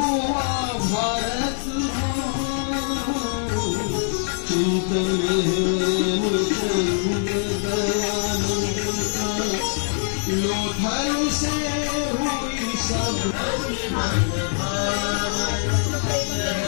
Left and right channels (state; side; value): silent; right; 63 dB below the other